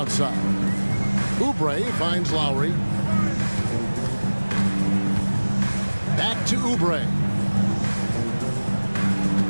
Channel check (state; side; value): inverted; both; correlation -1.00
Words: Oubre finds Lowry. Back to Oubre.